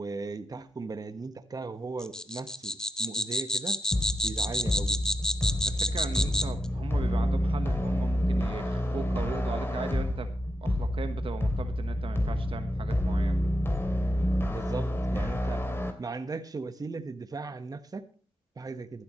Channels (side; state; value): both; normal; correlation 0.81